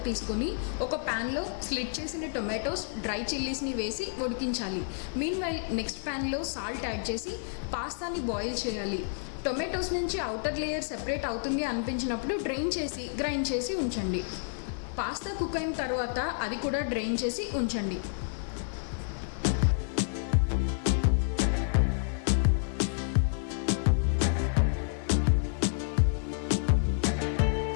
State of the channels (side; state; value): right; silent; digital silence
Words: తీసుకొని ఒక ప్యాన్లో స్లిట్ చేసిన టొమాటోస్, డ్రై చిల్లీస్ని వేసి ఉడికించాలి. మీన్వైల్ నెక్స్ట్ ప్యాన్లో సాల్ట్ యాడ్ చేసి పాస్తాని బాయిల్ చేయాలి. టొమాటోస్ నుంచి అవుటర్ లేయర్ సెపరేట్ అవుతుంది అనిపించినప్పుడు డ్రైన్ చేసి గ్రైండ్ చేసి ఉంచండి. పాస్తా కుక్ అయిన తర్వాత అది కూడా డ్రైన్ చేసి ఉంచండి.